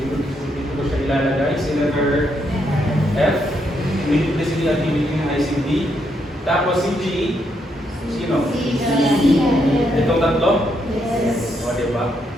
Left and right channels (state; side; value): normal; both; correlation 0.77